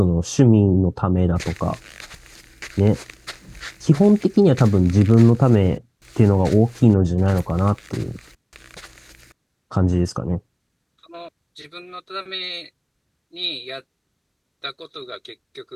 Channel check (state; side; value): identical; both; correlation 1.00